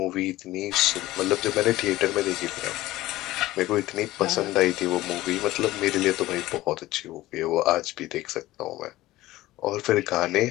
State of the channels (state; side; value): quieter; right; 16.9 dB